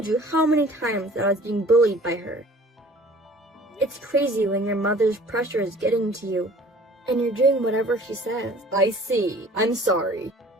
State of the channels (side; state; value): both; normal; correlation 0.49